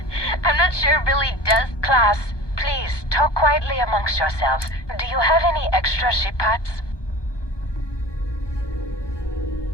I'm not sure Billy does. Class, please, talk quietly amongst yourselves. Do you have any extra ship parts?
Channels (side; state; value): right; late; 1.2 ms